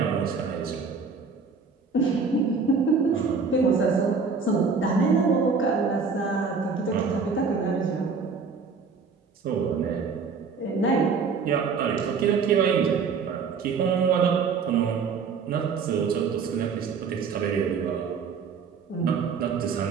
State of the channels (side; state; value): left; quieter; 5.2 dB